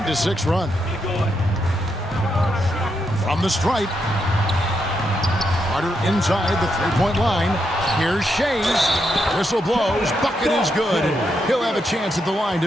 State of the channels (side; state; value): both; normal; correlation 0.81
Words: run. From the stripe. Carter inside the three-point line. Here's Shays. Whistle blows. Bucket is good. He'll have a chance at the line